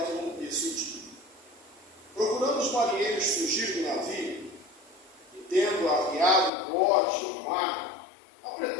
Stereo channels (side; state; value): right; drops out; at 6.5 s